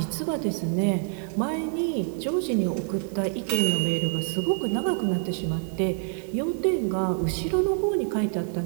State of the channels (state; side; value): silent; left; 61 dB below the other